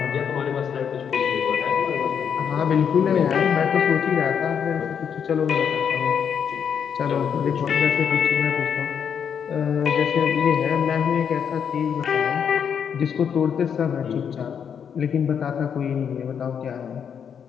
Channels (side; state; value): right; quieter; 7.6 dB